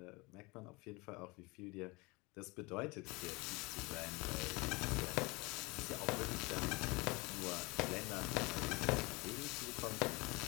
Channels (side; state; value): right; quieter; 25.6 dB